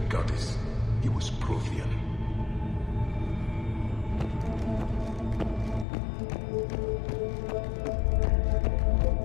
goddess. He was Prothean.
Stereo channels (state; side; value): drops out; right; at 5.9 s